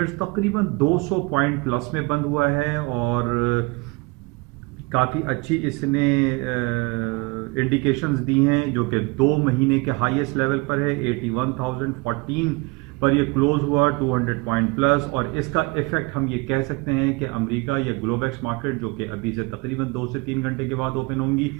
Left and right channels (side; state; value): left; quieter; 26.5 dB